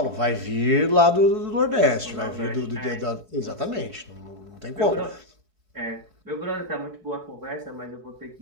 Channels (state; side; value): late; left; 4.6 ms